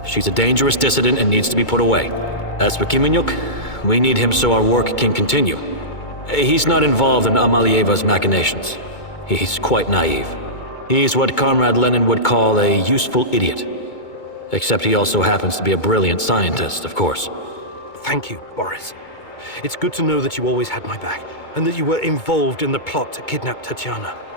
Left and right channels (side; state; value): right; late; 2.2 ms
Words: She's a dangerous dissident and needs to be put away. As for Kiminyuk, we need him so our work can continue. He's not involved in Amalieva's machinations. He's quite naive. He's what Comrade Lenin would call a useful idiot. Except he also happens to be a brilliant scientist, of course. Thank you, Boris. It's good to know that you always had my back, and that you were involved in the plot to kidnap Tatiana.